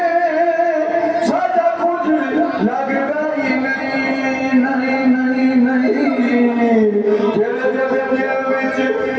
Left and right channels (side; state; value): both; identical; correlation 1.00